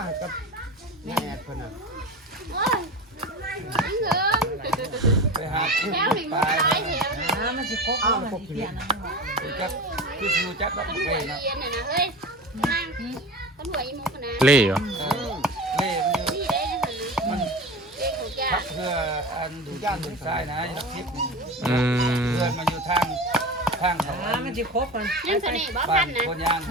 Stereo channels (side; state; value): both; normal; correlation 0.30